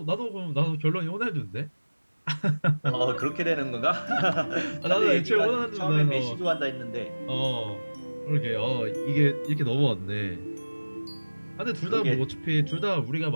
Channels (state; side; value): inverted; both; correlation -1.00